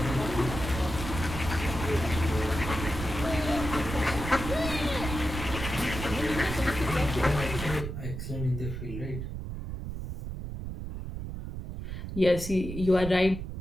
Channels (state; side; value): noise; right; rumble, 6 dB below the sound